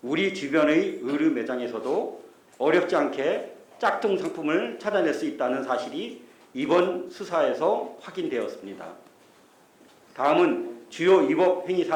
우리 주변의 의류 매장에서도 어렵지 않게 짝퉁 상품을 찾아낼 수 있다는 사실이 이번 수사에서 확인되었습니다. 다음은 주요 위법 행위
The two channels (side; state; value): both; identical; correlation 1.00